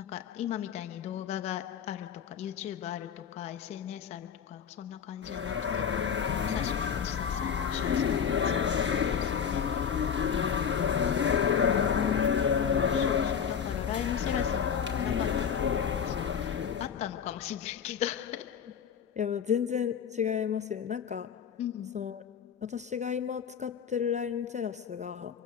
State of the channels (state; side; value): quieter; right; 7.6 dB